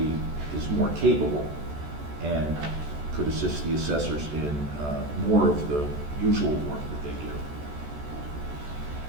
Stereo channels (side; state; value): left; late; 14 ms